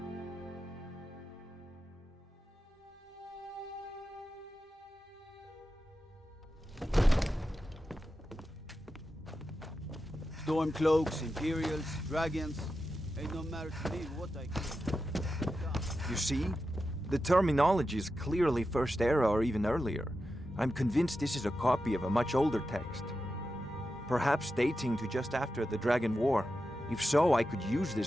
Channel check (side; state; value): both; normal; correlation 0.90